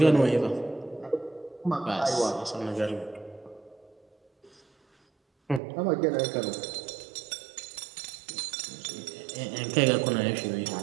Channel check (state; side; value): drops out; left; at 5.6 s